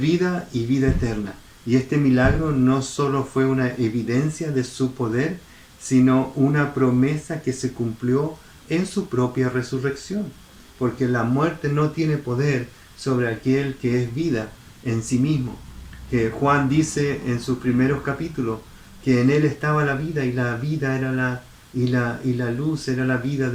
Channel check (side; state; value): both; identical; correlation 1.00